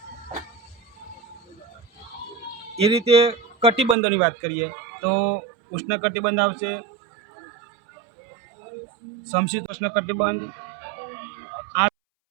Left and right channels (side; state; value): left; drops out; at 4.0 s